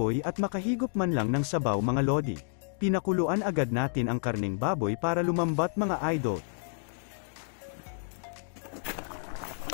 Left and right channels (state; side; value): silent; right; digital silence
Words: at makahigop man lang ng sabaw mga lodi. Pinakuluan agad natin ang karning baboy para lumambat mga idol.